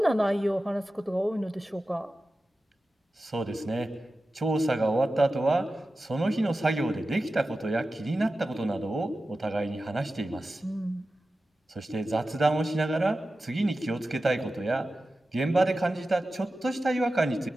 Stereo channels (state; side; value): normal; both; correlation 0.94